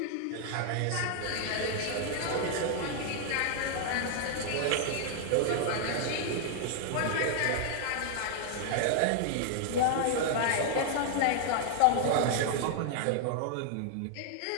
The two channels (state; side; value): different; both; correlation -0.01